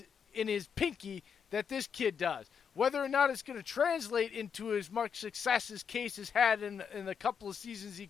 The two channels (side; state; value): right; quieter; 6.9 dB